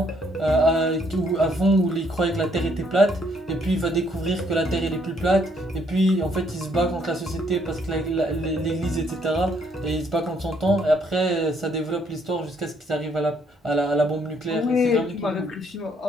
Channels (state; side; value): normal; both; correlation 0.69